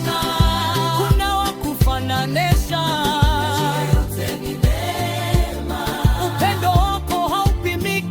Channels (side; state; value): both; identical; correlation 1.00